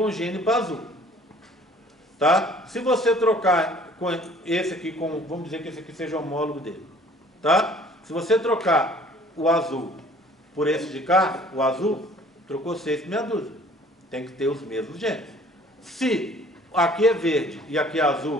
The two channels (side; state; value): both; normal; correlation 0.53